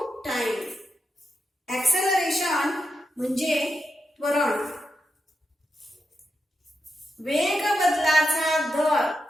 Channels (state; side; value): normal; both; correlation 0.87